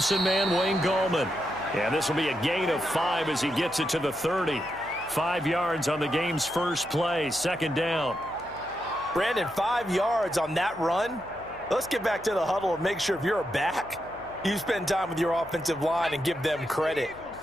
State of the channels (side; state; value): left; noise; hum, 22 dB below the sound